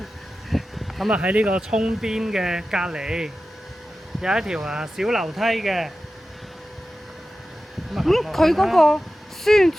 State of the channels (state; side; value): normal; both; correlation 0.94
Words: 咁啊喺呢個涌邊嘅隔離有一條小樓梯嘅。佢嗰個宣